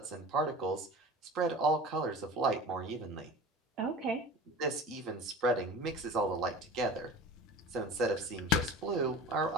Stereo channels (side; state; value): both; normal; correlation 0.36